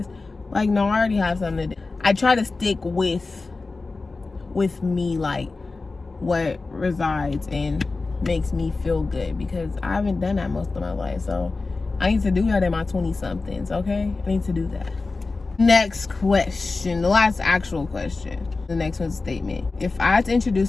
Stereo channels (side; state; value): right; quieter; 3.7 dB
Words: Like, no, I already have something to do. I try to stick with me, like what resides and makes me feel good, because I haven't done that most of my life. So I need to do that in my 20-somethings, okay? I need to do that. Next question, the last actual question. The next one's a statement. If I had to